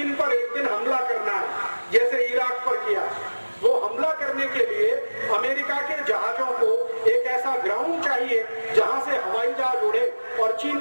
पर एक दिन हमला करना है, जैसे इराक पर किया। वो हमला करने के लिए अमेरिका के जहाजों को एक ऐसा ग्राउंड चाहिए जहां से हवाई जहाज उड़े और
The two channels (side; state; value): both; inverted; correlation -1.00